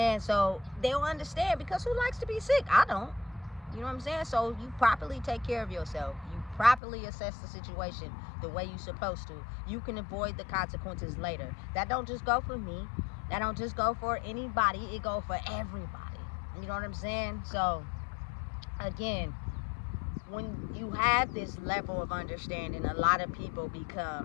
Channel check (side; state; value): right; drops out; at 6.8 s